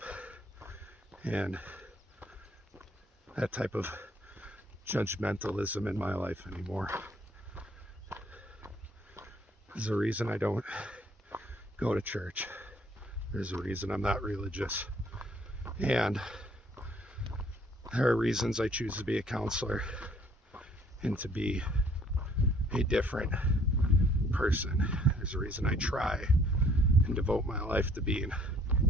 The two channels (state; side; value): normal; both; correlation 0.60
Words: and that type of judgmentalism in my life anymore. There's a reason I don't go to church. There's a reason I'm not religious. And there are reasons I choose to be a counselor and to be a different person. There's a reason I try and devote my life to being